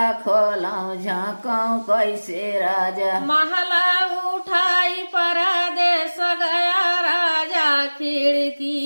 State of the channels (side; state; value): both; inverted; correlation -1.00